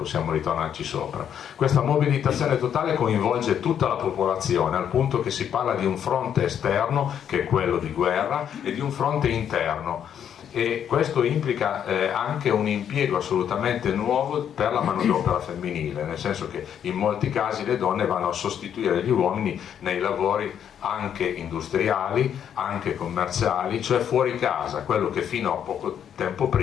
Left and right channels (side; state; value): right; quieter; 9.0 dB